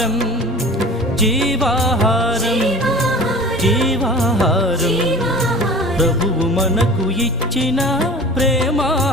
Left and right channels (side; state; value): both; normal; correlation 0.40